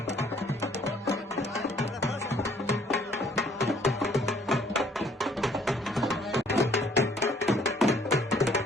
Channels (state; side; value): normal; both; correlation 0.61